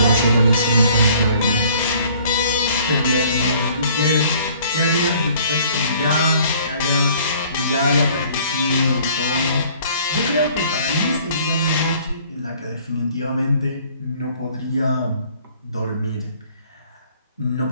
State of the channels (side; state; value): both; inverted; correlation -0.56